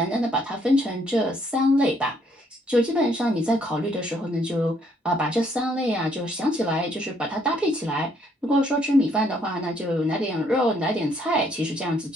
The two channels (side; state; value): both; normal; correlation 0.68